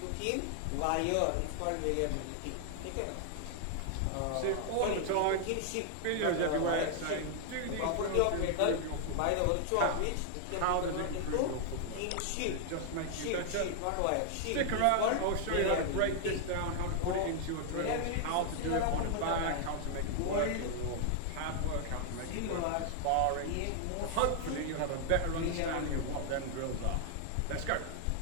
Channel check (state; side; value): different; both; correlation 0.00